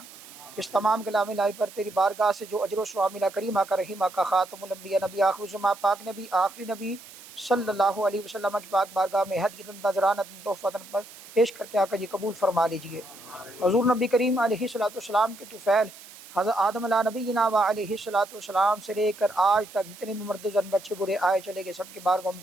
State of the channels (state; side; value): noise; right; hiss, 18 dB below the sound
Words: اس تمام کلام الہی پر تیری بارگاہ سے جو اجر و ثواب ملا، کریم آقا رحیم آقا خاتم الانبیاء نبی آخر الزمان پاک نبی آخری نبی صلی اللہ علیہ وسلم کی پاک بارگاہ میں ہدیۃ نذرانہ تحفۃ پر پیش کر کے آقا جی قبول فرما لیجئے. حضور نبی کریم علیہ الصلوۃ والسلام کے طفیل حضرت آدم علیہ نبینا و علیہ الصلوۃ والسلام سے لے کر آج تک جتنے بھی مرد زن بچے برے آئے چلے گئے سب کی بارگاہ میں